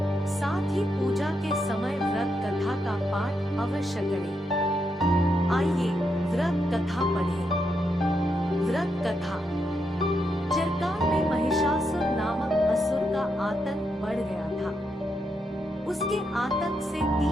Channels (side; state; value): both; normal; correlation 0.82